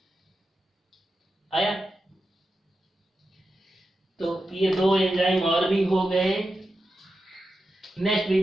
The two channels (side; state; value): both; normal; correlation 0.90